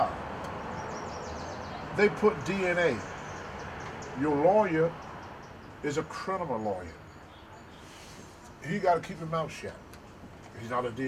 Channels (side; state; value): both; identical; correlation 1.00